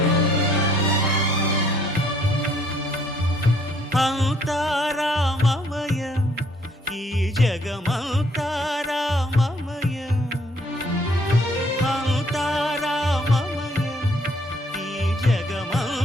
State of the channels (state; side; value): normal; both; correlation 0.64